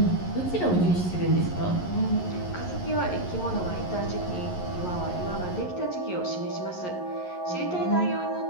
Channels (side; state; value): right; late; 11 ms